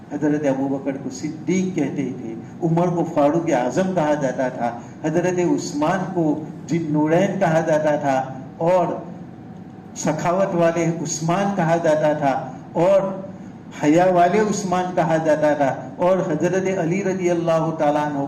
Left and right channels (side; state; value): both; identical; correlation 1.00